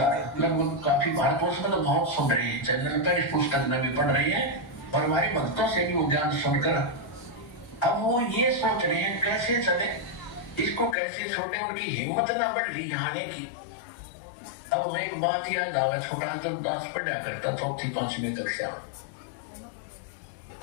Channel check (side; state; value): right; drops out; at 11.0 s